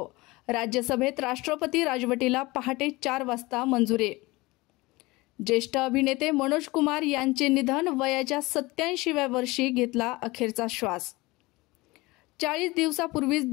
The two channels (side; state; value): right; quieter; 21.9 dB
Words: राज्यसभेत राष्ट्रपती राजवटीला पहाटे 4 वाजता मंजुरी। ज्येष्ठ अभिनेते मनोज कुमार यांचे निधन, वयाच्या 87व्या वर्षी घेतला अखेरचा श्वास। 40 दिवसापूर्वीच